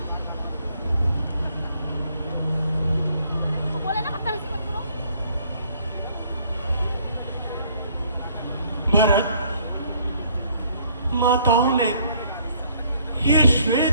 भरत, माताओं ने ये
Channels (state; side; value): inverted; both; correlation -0.63